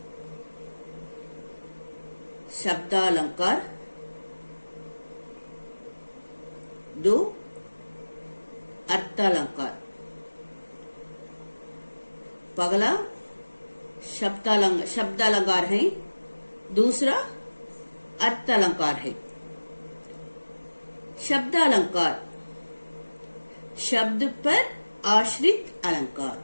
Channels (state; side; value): inverted; both; correlation -1.00